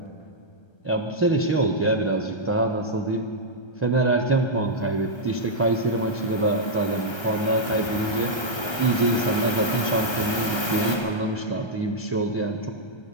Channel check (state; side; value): late; right; 1.3 ms